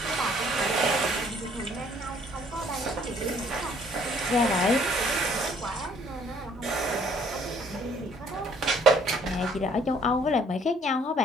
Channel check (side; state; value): both; normal; correlation 0.61